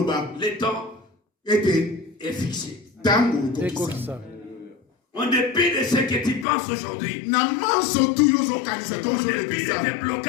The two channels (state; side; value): drops out; right; at 6.5 s